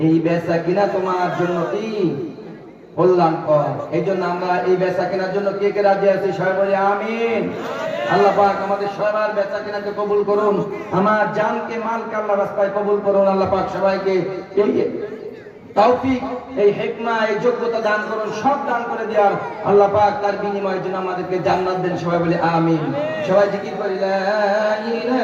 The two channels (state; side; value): identical; both; correlation 1.00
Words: এই বেচা কিনা তোমার জন্য কি কল্যাণকর। এই জন্য আমরা এই বেচা কেনার জন্য কে কে রাজি আছি সবাই বলি আমিন। আল্লাহ পাক আমাদের সবার বেচা কেনাকে কবুল করুন, আমার জানকে মালকে আল্লাহ রাস্তায় কবুল করুন। আল্লাহ পাক সবাইকে এই তৌফিক, এই হিকমা, এই যোগ্যতা দান করুন, সব দান করে দেওয়ার। আল্লাহ পাক তার বিনিময়ের জন্য আমাদেরকে জান্নাত দেন, সবাই বলি আমিন। সবাই জিকির করি লা